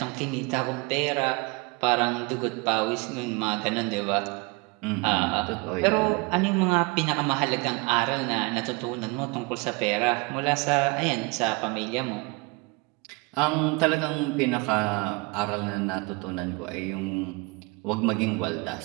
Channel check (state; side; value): quieter; left; 26.9 dB